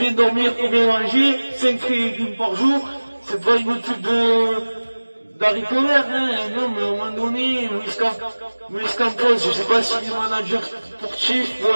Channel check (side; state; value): both; inverted; correlation -1.00